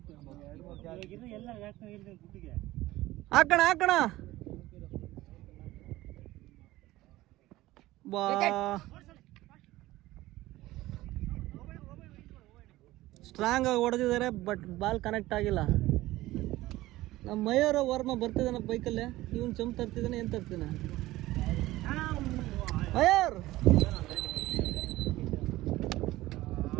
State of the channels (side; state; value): left; quieter; 17.2 dB